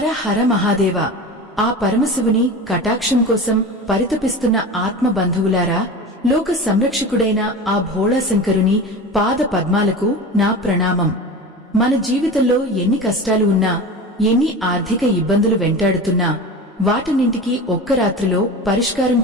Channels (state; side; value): normal; both; correlation 0.31